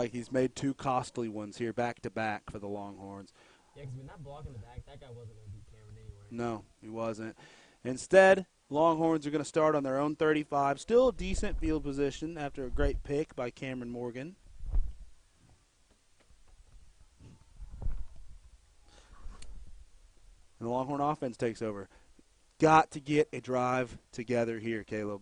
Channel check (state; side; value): identical; both; correlation 1.00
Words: he's made 2 costly ones here back to back for the Longhorns. Yeah, because when that block in the back, that guy wasn't going to beat Cameron anyway. No, he wasn't. Instead, Longhorns are going to start on their own 35. Still a decent field position after a great pick by Cameron Morgan. And the Longhorn offense takes over. Got to get a drive together here, Caleb.